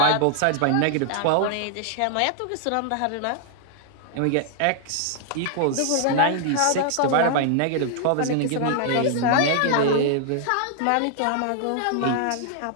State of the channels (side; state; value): both; different; correlation 0.00